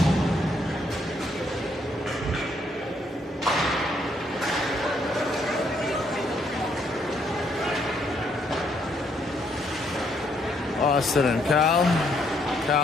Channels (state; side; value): normal; both; correlation 0.72